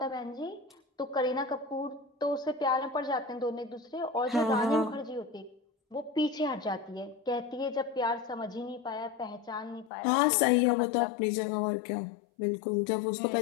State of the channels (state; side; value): drops out; right; at 9.9 s